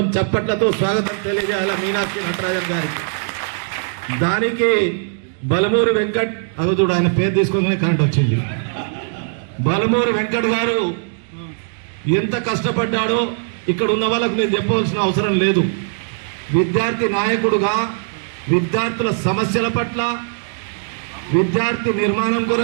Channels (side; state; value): left; silent; digital silence